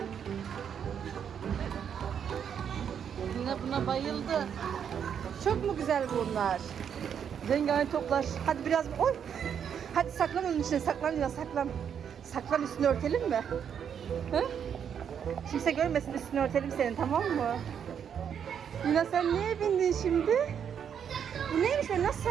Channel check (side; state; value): left; quieter; 8.1 dB